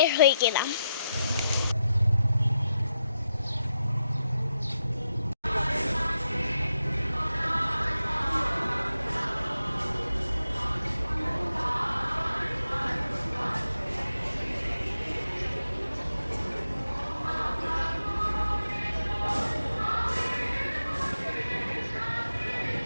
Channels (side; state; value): both; inverted; correlation -0.86